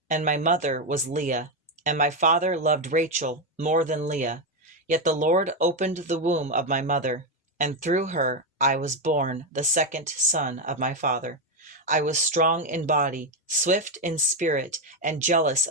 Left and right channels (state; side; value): normal; both; correlation 0.07